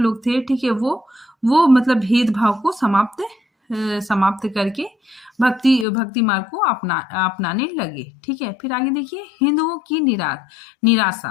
लोग थे, ठीक है, वो मतलब भेदभाव को समाप्त समाप्त करके भक्ति मार्ग को अपनाने लगे। ठीक है, फिर आगे देखिए हिंदुओं की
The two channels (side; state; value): right; drops out; at 5.9 s